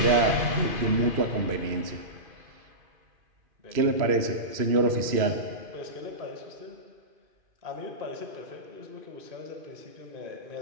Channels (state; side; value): late; left; 2.5 ms